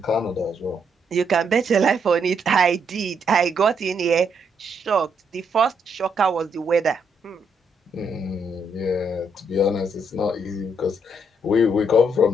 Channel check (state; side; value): normal; both; correlation 0.75